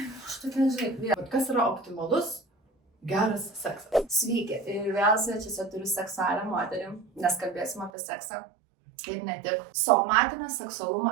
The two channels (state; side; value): drops out; left; at 7.9 s